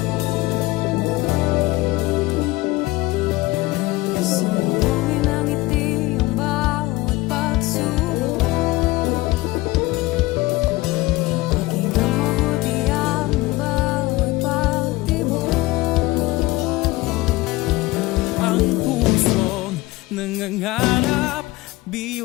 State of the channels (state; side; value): quieter; right; 20.0 dB